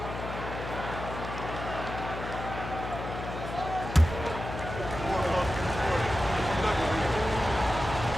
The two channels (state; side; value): noise; left; hum, 7 dB below the sound